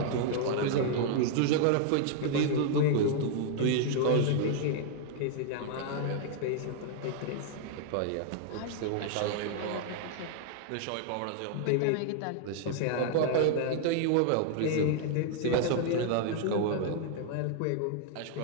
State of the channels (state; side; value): different; both; correlation -0.01